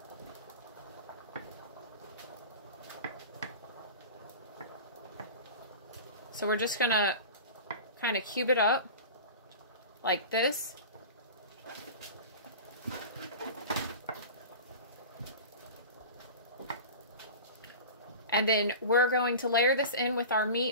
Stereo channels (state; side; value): inverted; both; correlation -0.34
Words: So we're just gonna kind of cube it up like this. And then we're going to layer this in with our